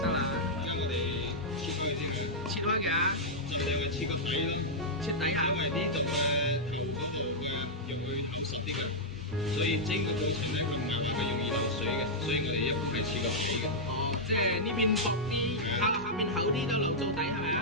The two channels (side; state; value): both; normal; correlation -0.07